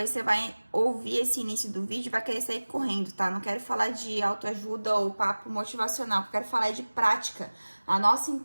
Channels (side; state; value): both; inverted; correlation -1.00